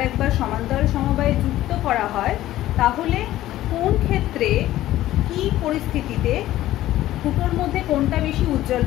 একবার সমান্তরাল সমবায়ে যুক্ত করা হয়, তাহলে কোন ক্ষেত্রে কি পরিস্থিতিতে দুটোর মধ্যে কোনটা বেশি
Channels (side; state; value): right; quieter; 14.6 dB